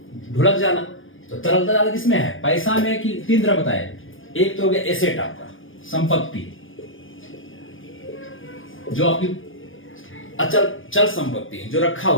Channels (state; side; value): late; right; 0.58 ms